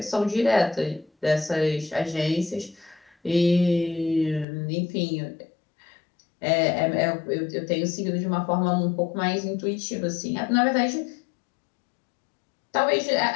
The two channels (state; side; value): drops out; right; at 4.5 s